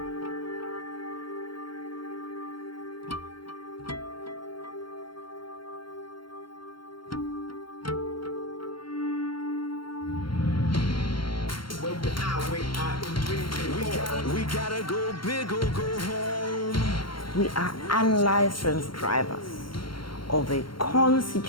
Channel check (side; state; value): right; late; 0.73 ms